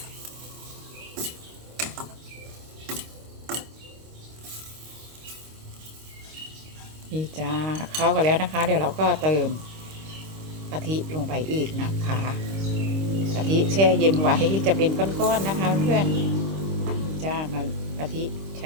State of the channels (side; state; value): left; late; 26 ms